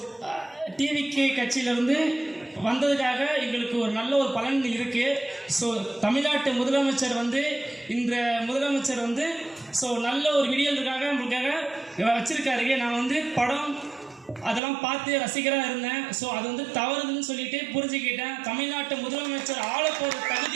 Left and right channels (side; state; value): left; drops out; at 14.6 s